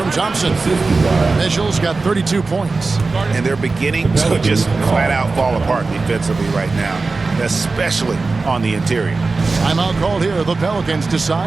Thompson. Mitchell's got 32 points. And they're beginning to just flat out fall apart defensively right now, especially on the interior. Timeout called here. The Pelicans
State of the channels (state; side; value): quieter; left; 3.8 dB